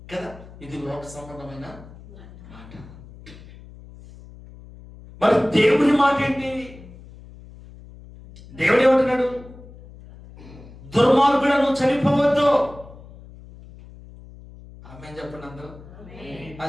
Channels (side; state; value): left; noise; hum, 19 dB below the sound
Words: కదా. ఇది లోక సంబంధమైన మాట. మరి దేవుని మాట ఏంటి? దేవుడు ఏమంటున్నాడు? దుర్మార్గుడు నువ్వు చనిపోవద్దు. ఆమేన్ చెప్పండి అందరూ.